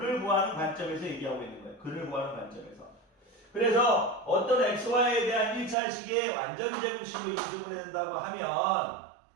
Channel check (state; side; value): drops out; left; at 5.8 s